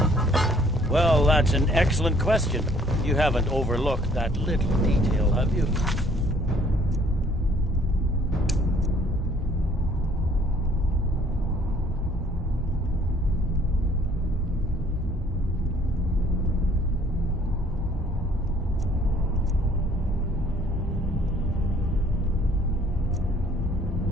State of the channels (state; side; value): normal; both; correlation 0.59